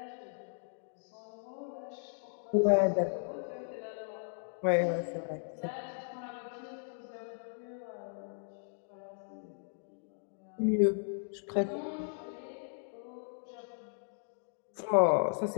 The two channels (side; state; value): right; silent; digital silence